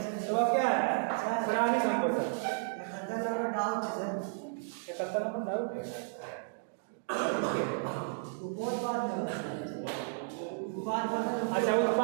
तो वह क्या है, प्राणी संपोषण। 71 नंबर डाउट है, अच्छा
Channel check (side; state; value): left; silent; digital silence